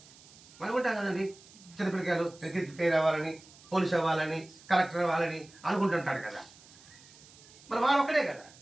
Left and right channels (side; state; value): right; noise; hiss, 23 dB below the sound